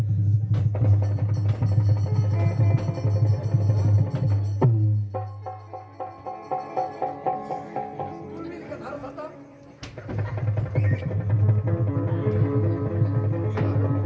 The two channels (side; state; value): both; identical; correlation 1.00